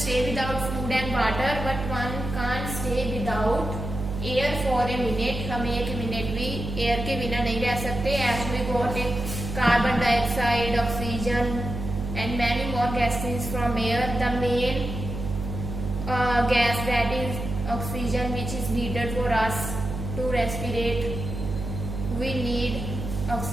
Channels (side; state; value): right; noise; hum, 6 dB below the sound